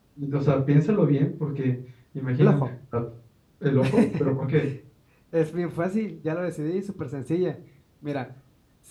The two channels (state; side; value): identical; both; correlation 1.00